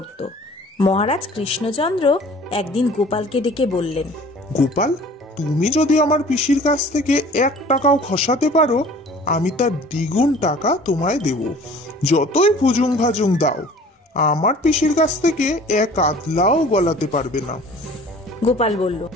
মহারাজ কৃষ্ণচন্দ্র একদিন গোপালকে ডেকে বললেন, গোপাল, তুমি যদি আমার পিসির কাছ থেকে 1 টাকাও খসাতে পারো, আমি তার দ্বিগুণ টাকা তোমায় দেব। যতই ভুজুং ভাজুং দাও, আমার পিসির কাছ থেকে 1 আধলাও গলাতে পারবে না। গোপাল বলল,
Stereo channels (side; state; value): both; normal; correlation 0.48